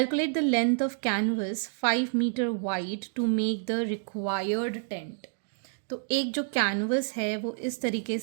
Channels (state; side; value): silent; left; digital silence